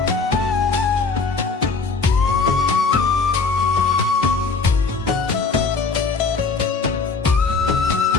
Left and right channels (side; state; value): right; quieter; 4.4 dB